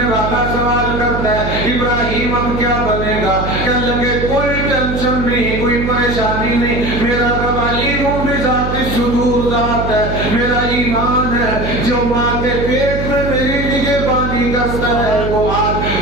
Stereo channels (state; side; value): noise; right; hum, 4 dB below the sound